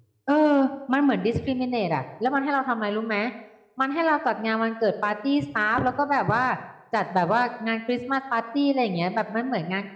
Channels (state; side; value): identical; both; correlation 1.00